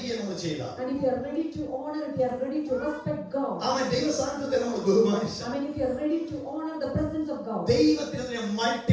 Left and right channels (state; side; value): identical; both; correlation 1.00